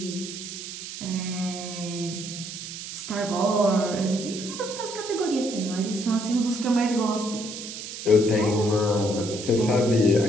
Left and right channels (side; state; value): right; noise; hiss, 9 dB below the sound